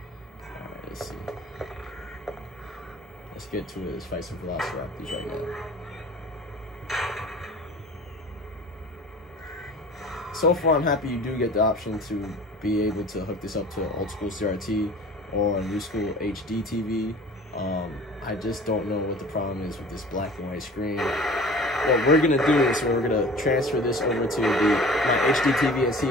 Alright, let's see. Let's get to it. Let's fight some velociraptors right now. So far, I'm happy you do get the option to be able to hook this up to an old school CRT or a new school HD TV. I just don't know what the problem is with this black and white screen. What we're gonna do is we're gonna transfer this over to my HD TV and see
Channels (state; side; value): normal; both; correlation 0.43